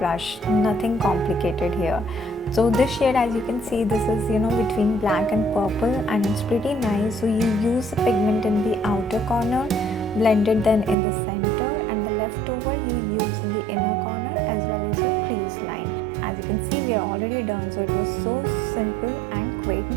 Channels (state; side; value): drops out; left; at 11.0 s